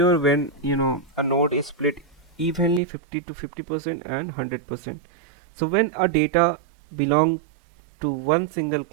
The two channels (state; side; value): drops out; left; at 2.8 s